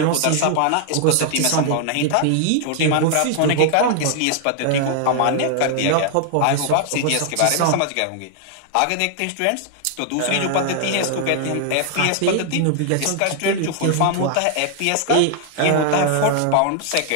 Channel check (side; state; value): both; different; correlation 0.00